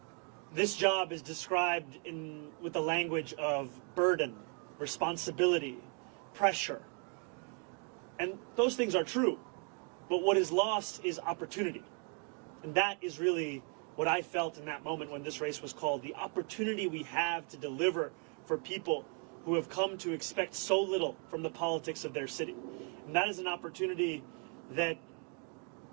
this job is described with the language of burden, responsibility, pressure. And those things are true. But what is lost is opportunity. And that is really what I felt in that moment when this race was called, the opportunity we have to deliver for people who have come to expect so little from the politics of their city. And that is an opportunity that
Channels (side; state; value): left; quieter; 39.9 dB